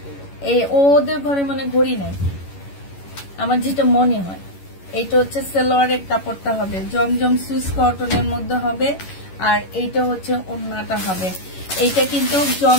এই ওদের ঘরে মানে ঘড়ি নাই, আমার যেটা মনে হয়। এইটা হচ্ছে সেলোয়ারের কাপড়টা হবে, জমজম সুইস কটনের মধ্যে হবে, আর এইটা হচ্ছে ওড়নাটা হবে। এইটা কিন্তু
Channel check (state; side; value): late; right; 11 ms